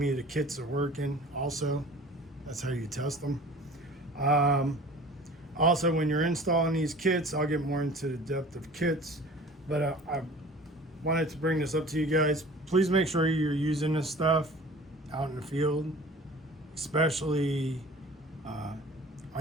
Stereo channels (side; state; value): both; normal; correlation 0.44